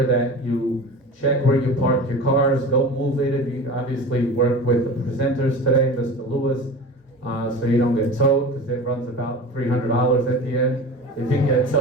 that you check where you park your cars. Don't move it. If you obviously work with the presenters today, Mr. Lewis, so you don't get towed, because it runs about $300 at the end if you get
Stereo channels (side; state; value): both; normal; correlation 0.34